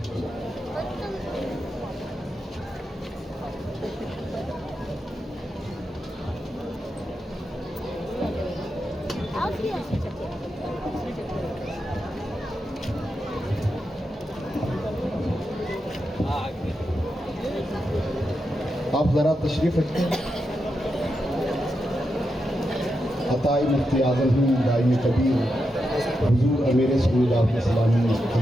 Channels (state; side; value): normal; both; correlation 0.86